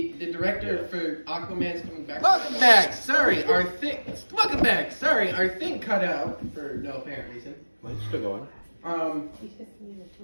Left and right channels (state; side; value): inverted; both; correlation -1.00